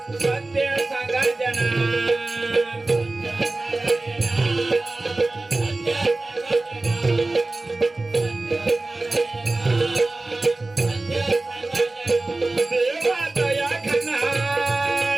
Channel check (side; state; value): left; quieter; 3.1 dB